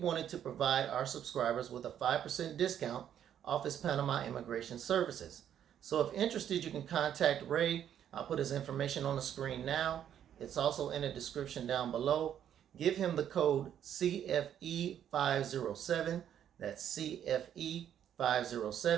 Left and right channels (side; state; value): left; quieter; 9.8 dB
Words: to provide our subscribers with a 5% discount off his Panama immigration services. So if interested, you can contact Ray. I'll put his information on the screen now. It's also in the description down below. Give him the code CFE507. That's